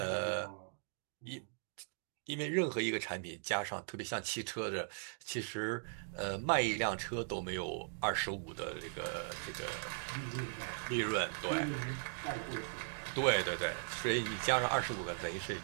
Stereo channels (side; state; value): left; silent; digital silence